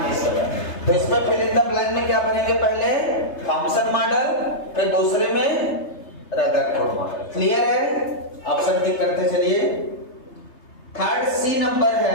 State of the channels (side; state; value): right; late; 3.3 ms